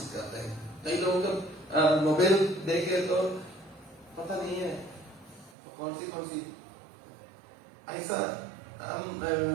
करते हैं। कई लोगों का मोबाइल देखे तो पता नहीं है कौन सी ऐसा, हम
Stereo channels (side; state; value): left; drops out; at 5.6 s